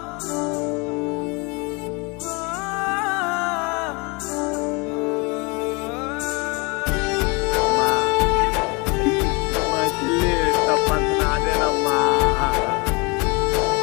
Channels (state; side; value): quieter; right; 29.0 dB